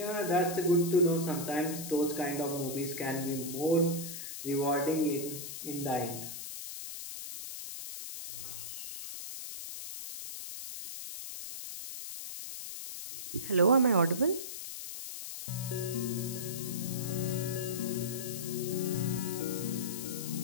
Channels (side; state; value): left; noise; hiss, 8 dB below the sound